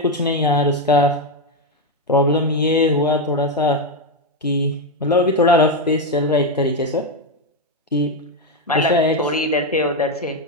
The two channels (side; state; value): both; normal; correlation 0.06